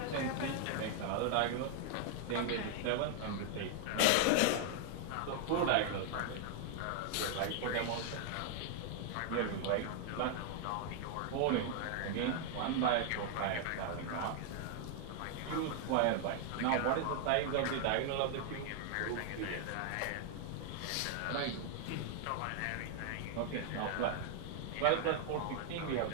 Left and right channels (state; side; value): different; both; correlation 0.00